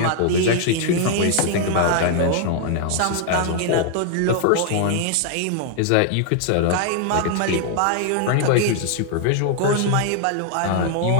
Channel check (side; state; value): both; different; correlation 0.00